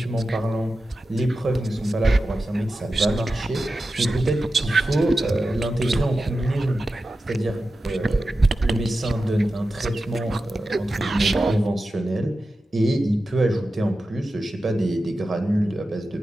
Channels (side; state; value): both; normal; correlation 0.92